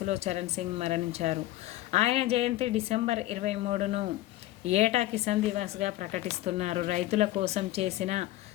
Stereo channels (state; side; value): quieter; right; 16.0 dB